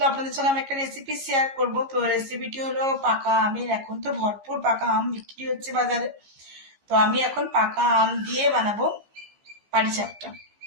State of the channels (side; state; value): left; late; 15 ms